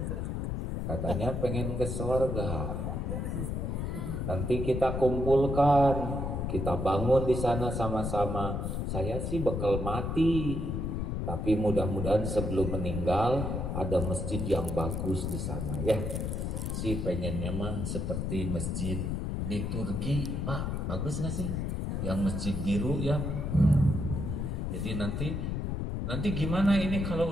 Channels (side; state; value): left; noise; rumble, 2 dB below the sound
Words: Katanya pengen ke surga. Nanti kita kumpulkan, kita bangun di sana sama-sama. Saya sih bakal mati, tapi mudah-mudahan sebelum meninggal ada masjid yang bagus di sana ya. Si pengennya mah seperti masjid di Turki, Pak, bagus nggak sih? Yang masjid biru ya. Jadi nanti gimana ini